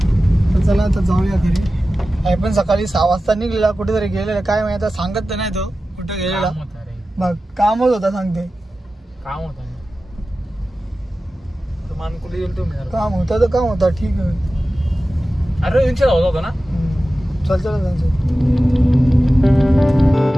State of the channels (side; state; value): both; normal; correlation 0.95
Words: तर चला आता जाऊया घरी. आई पण सकाळी 6 वाजता निघलेला कुठेतरी गेलेला काय माहिती आता सांगत तर नाही तो कुठे गेलेला. मग कामच होता सांगते. काम होता काम होता तर काम होता ठीक आहे. अरे होता ना. चल चल